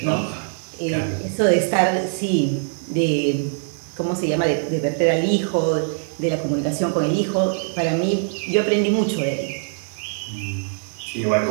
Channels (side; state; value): left; silent; 64 dB below the other